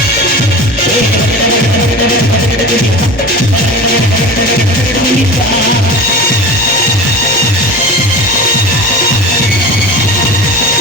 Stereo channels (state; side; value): normal; both; correlation 0.33